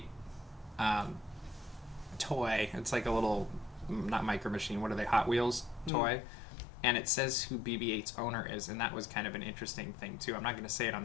toy. It's like a little, not Micro Machine, what are they, Hot Wheels toy? And it says who BB-8's owner is, and that was kind of an interesting thing too. I'm not going to say it on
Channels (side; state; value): right; drops out; at 5.9 s